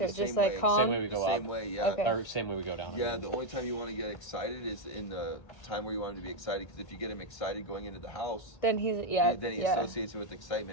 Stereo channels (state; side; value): late; right; 1.9 ms